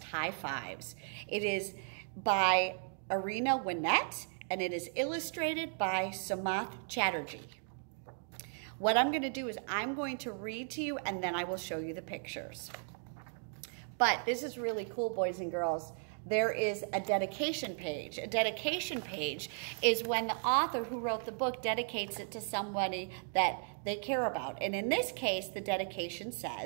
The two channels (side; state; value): left; silent; 54 dB below the other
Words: High Fives. It is by Arena Winnett, and it is illustrated by Samath Chatterjee. What I'm going to do is I'm going to read to you, and then I will show you the pictures. But this is really cool, boys and girls. There is a dedication page. A dedication page is when the author who wrote the book dedicates it to somebody that they care about. And in this case, the dedication